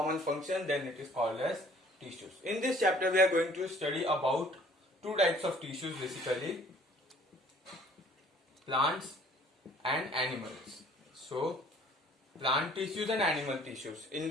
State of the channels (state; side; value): normal; both; correlation 0.55